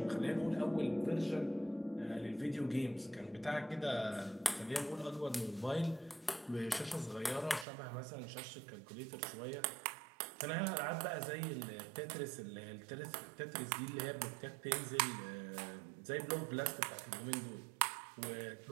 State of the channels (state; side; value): drops out; left; at 7.7 s